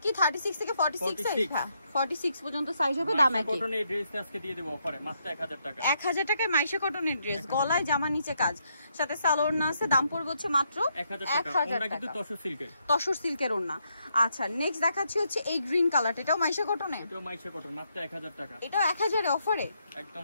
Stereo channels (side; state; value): both; inverted; correlation -0.77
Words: কি 36 থেকে 46 সাইজ? হ্যাঁ 46 পর্যন্ত সাইজ হবে। দাম একই। কটনের ড্রেসটা আজকে দিয়ে দেব অফারে মাত্র 1000 টাকা। 1000 টাকায় মাইশা কটনের ড্রেস, গলায় জামার নিচে কাজ, সাথে সালোয়ার আছে। দাম পড়বে হচ্ছে মাত্র 1000 টাকা। কিন্তু তসর সিল্কের, তসর সিল্কের ওড়না। আচ্ছা, নেক্সট দেখাচ্ছি হচ্ছে এই গ্রিন কালারটা। এটাও মাইশা কটনে? এটাও মাইশা কটন, মাত্র 1000 টাকা। এটাও 1000 এ অফারে, একদম